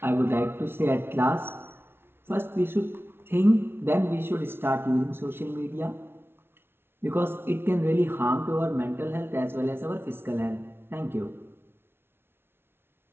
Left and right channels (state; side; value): late; left; 0.11 ms